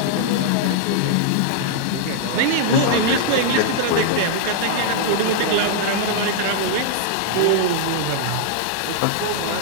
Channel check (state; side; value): different; both; correlation -0.01